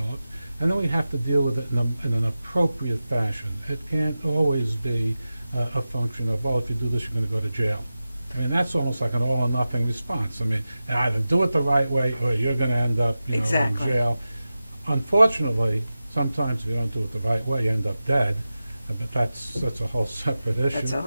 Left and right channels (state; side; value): inverted; both; correlation -0.93